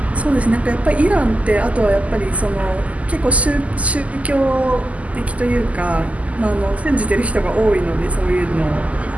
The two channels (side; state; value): left; late; 0.070 ms